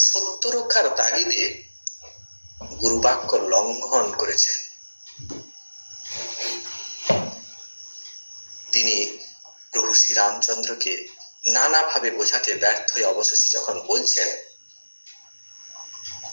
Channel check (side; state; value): both; inverted; correlation -1.00